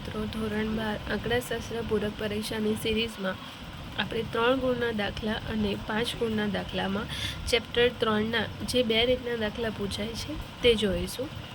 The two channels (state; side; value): identical; both; correlation 1.00